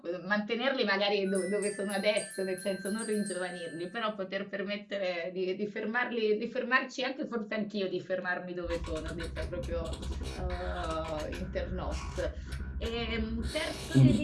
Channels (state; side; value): identical; both; correlation 1.00